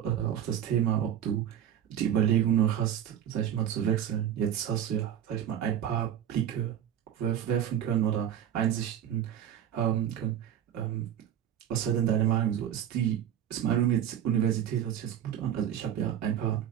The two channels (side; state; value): left; quieter; 10.2 dB